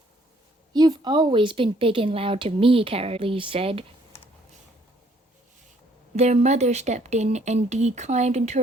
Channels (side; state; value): both; normal; correlation 0.64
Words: "You've always been big and loud to me," Cara Lee said. Their mother stepped in, and Dee climbed into